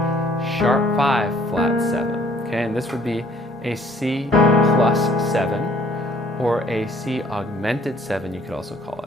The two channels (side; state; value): both; normal; correlation 0.59